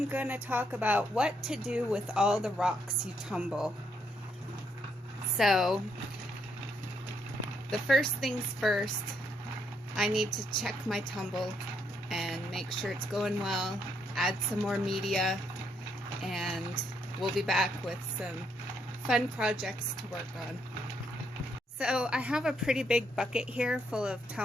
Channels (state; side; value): normal; both; correlation 0.75